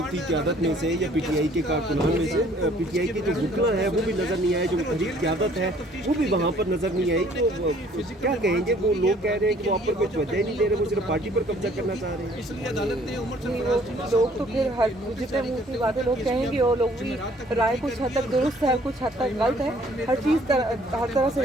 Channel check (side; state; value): both; normal; correlation 0.58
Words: क़यादत में से या पीटीआई के कारकुनान में से पीटीआई के जो वकला है वो भी नज़र नहीं आए, जो तहरीर क़यादत है वो भी वहाँ पर नज़र नहीं आई। तो क्या कहेंगे? वो लोग कह रहे हैं कि वो आप पर कोई तवज्जो ही नहीं दे रहे, वो सिर्फ पार्टी पर कब्जा करना चाह रहे हैं। इसलिए अदालत ने लोग तो फिर हर जितने मुँह की बातें लोग कहेंगे, वो लोग भी राय कुछ हद तक दुरुस्त है, कुछ हद तक गलत है। हर चीज़ हर तरह से